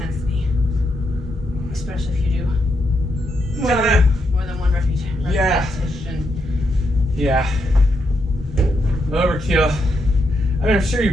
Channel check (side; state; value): both; normal; correlation 0.80